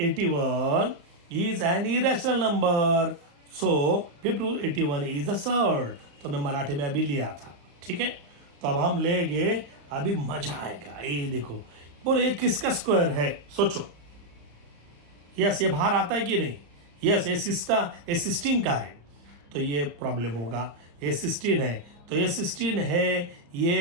is an irrational number, so 5th root 81 is a surd. तो मैं मराठी में अभी लिया था, ठीक है। तो अब हम लेंगे, अभी मजा आएगा। ये देखो, बोलो ये किसका स्क्वायर है, सोचो। यस, ये बाहर आता है कि नहीं, यस, ये 16 का है, तो ये प्रॉब्लम होगा। ये 16 है, तो ये 16 है,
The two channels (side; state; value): left; late; 35 ms